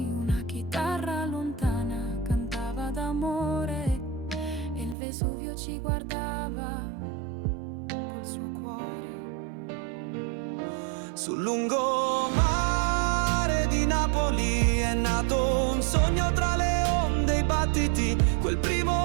Una chitarra lontana cantava d'amore e il Vesuvio ci guardava col suo cuore. Sul lungomare di Napoli è nato un sogno tra le onde e i battiti, quel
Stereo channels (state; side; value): drops out; left; at 5.0 s